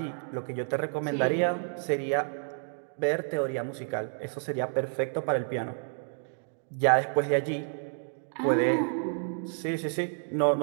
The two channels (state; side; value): silent; left; digital silence